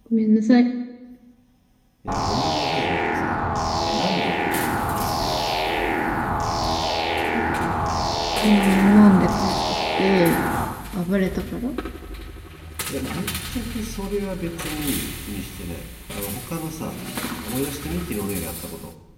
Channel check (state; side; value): identical; both; correlation 1.00